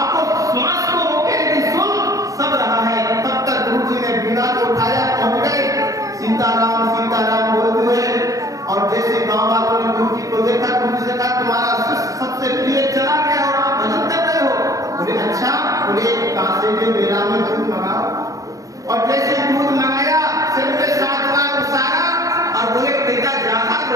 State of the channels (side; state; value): left; late; 0.16 ms